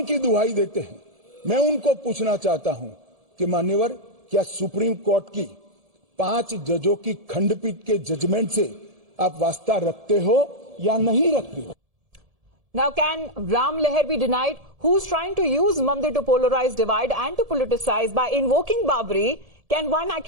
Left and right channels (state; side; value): late; left; 1.7 ms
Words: की दुहाई देते हैं। मैं उनको पूछना चाहता हूं कि मान्यवर, क्या सुप्रीम कोर्ट की 5 जजों की खंडपीठ के जजमेंट से आप वास्ता रखते हो या नहीं रखते हो? Now, can Ram Leher be denied? Who's trying to use Mandir to polarize, divide and to politicize by invoking Babri? Can one